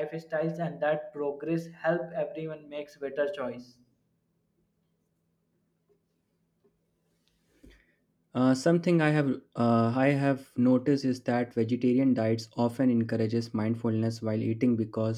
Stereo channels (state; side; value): identical; both; correlation 1.00